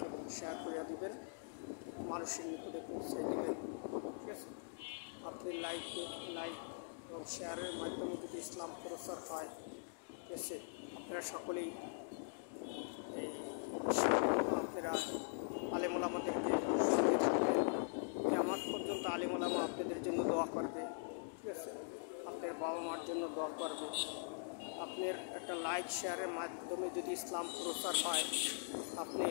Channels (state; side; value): silent; right; digital silence